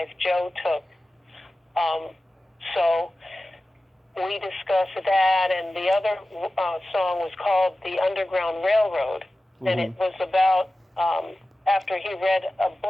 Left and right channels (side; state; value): both; normal; correlation 0.95